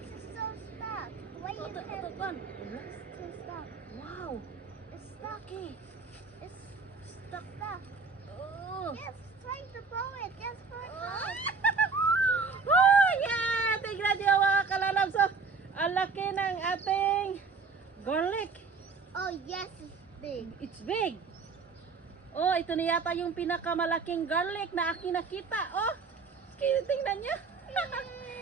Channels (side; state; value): left; quieter; 4.7 dB